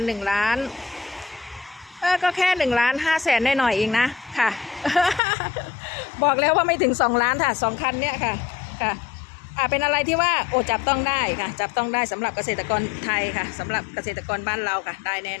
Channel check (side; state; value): right; drops out; at 5.2 s